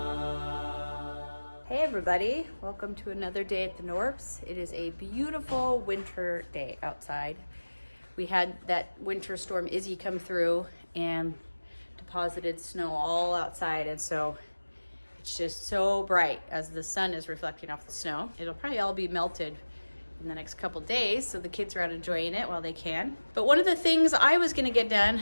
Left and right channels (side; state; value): both; inverted; correlation -1.00